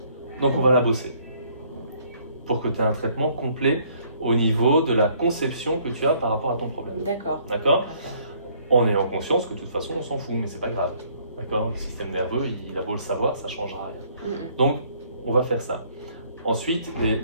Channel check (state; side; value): inverted; both; correlation -0.63